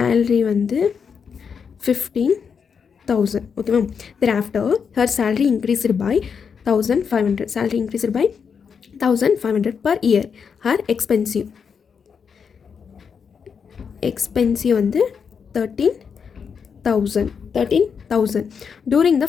வந்து 15,000. Okay ma'am. Thereafter her salary increased by 1,500. Salary increased by 1,500 per year. Her expensive வந்து 13,000 during the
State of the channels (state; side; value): quieter; right; 6.4 dB